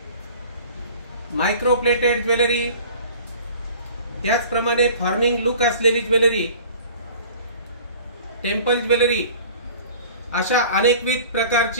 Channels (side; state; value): both; inverted; correlation -0.45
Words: मायक्रो प्लेटेड ज्वेलरी, त्याचप्रमाणे फॉर्मिंग लुक असलेली ज्वेलरी, टेम्पल ज्वेलरी, अशा अनेकविध